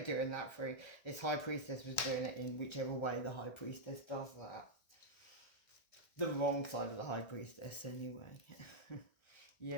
that for this high priestess was doing it in whichever way the high priestess does that. The wrong side of the high priestess, anyway.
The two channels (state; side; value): late; right; 1.3 ms